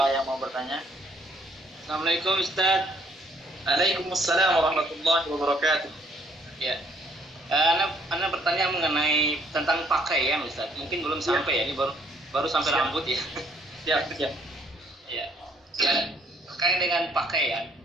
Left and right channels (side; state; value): both; normal; correlation 0.64